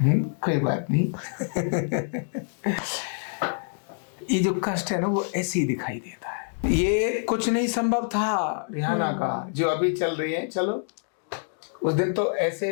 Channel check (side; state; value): right; silent; digital silence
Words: नहीं, कोई बात नहीं। ये जो कष्ट है ना वो ऐसे ही दिखाई देता है। ये कुछ नहीं संभव था रिहाना का, जो अभी चल रही है। चलो, उस दिन तो